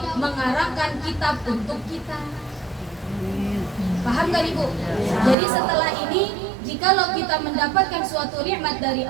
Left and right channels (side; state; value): left; drops out; at 5.4 s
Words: mengarangkan kitab untuk kita. Paham gak Ibu? Jadi setelah ini kalau kita mendapatkan suatu nikmat dari